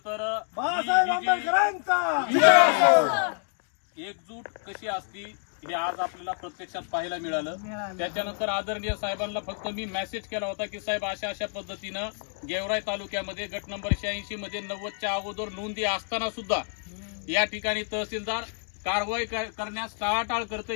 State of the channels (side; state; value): right; silent; 59 dB below the other